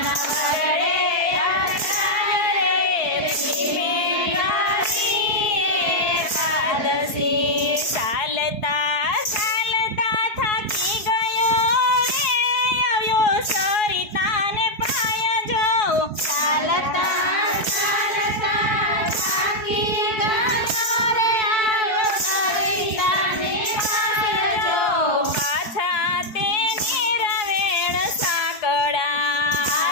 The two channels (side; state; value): right; late; 4.6 ms